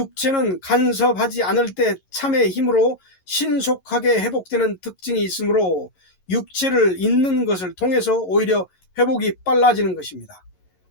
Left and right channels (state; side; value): late; right; 11 ms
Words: 간섭하지 않을 때 참의 힘으로 신속하게 회복되는 특징이 있으므로 육체를 잊는 것을 통해서 오히려 회복이 빨라지는 것입니다.